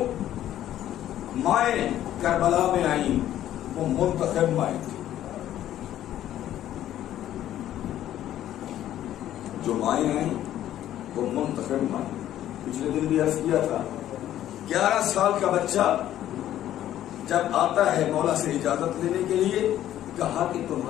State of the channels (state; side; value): quieter; right; 12.3 dB